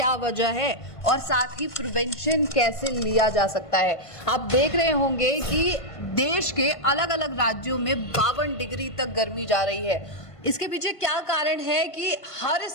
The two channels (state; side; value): late; right; 1.5 ms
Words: वजह है और साथ ही प्रिवेंशन कैसे लिया जा सकता है। आप देख रहे होंगे कि देश के अलग अलग राज्यों में 52 डिग्री तक गर्मी जा रही है। इसके पीछे क्या कारण है कि हर